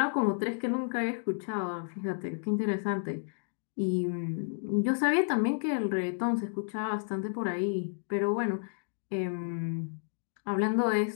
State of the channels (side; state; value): right; silent; digital silence